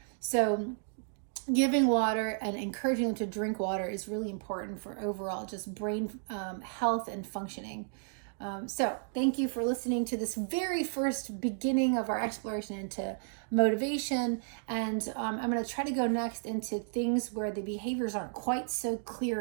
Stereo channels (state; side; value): silent; left; digital silence